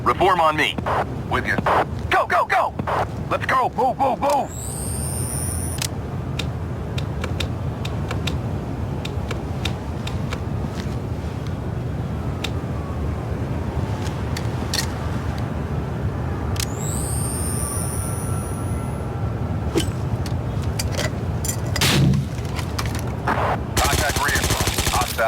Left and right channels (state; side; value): identical; both; correlation 1.00